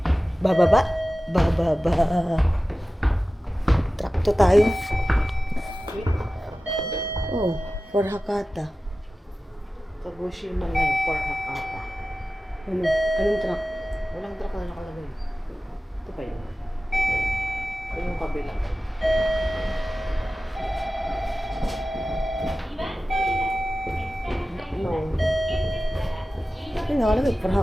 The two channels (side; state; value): both; normal; correlation 0.95